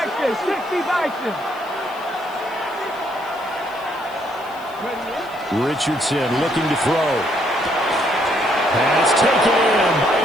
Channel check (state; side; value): noise; left; hiss, 25 dB below the sound